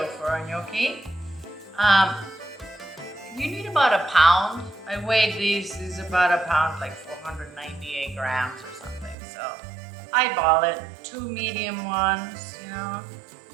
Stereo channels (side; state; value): left; drops out; at 9.2 s